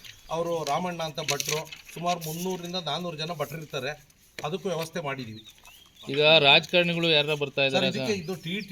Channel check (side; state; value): both; identical; correlation 1.00